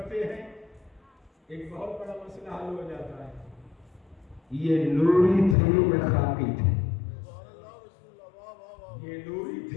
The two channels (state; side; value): drops out; right; at 5.6 s